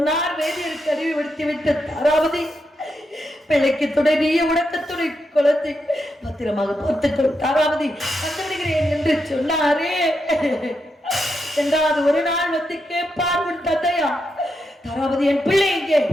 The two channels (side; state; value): both; normal; correlation 0.84